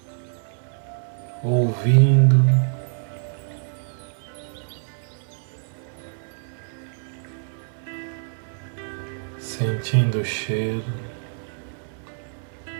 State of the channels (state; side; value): silent; left; 61 dB below the other